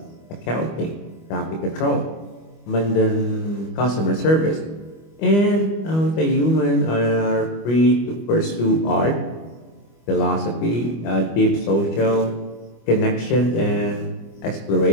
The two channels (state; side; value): late; right; 25 ms